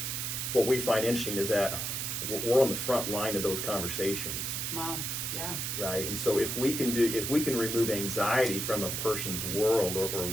what we find interesting is that we're on the front line of those conversations. Wow. Yeah. Right. And so if we can remove anxiety from a person's world or at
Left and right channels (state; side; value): noise; right; hiss, 2 dB below the sound